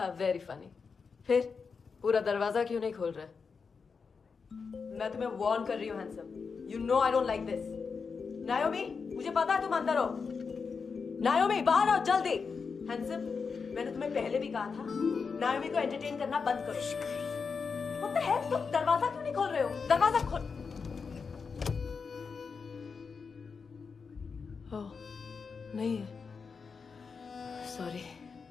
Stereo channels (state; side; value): quieter; right; 5.3 dB